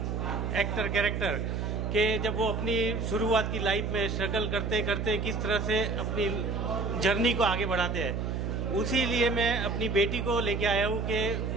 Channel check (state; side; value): noise; right; hum, 2 dB below the sound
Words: एक्टर कैरेक्टर कि जब वो अपनी शुरुआत की लाइफ में स्ट्रगल करते करते किस तरह से अपनी जर्नी को आगे बढ़ाते हैं, उसी लिए मैं अपनी बेटी को लेके आया हूँ कि